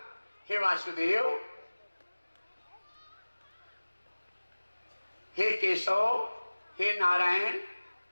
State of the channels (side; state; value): both; inverted; correlation -1.00